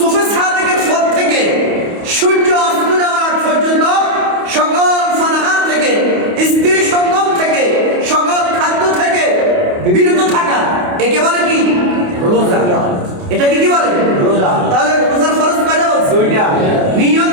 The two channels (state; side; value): late; left; 28 ms